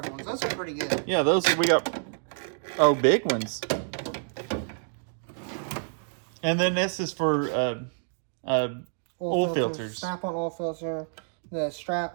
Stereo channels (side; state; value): left; silent; digital silence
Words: ones. Those are pretty good. Yeah, those we got. Oh, big ones. And then this is for oil filters. Snap-on oil filter. The strap.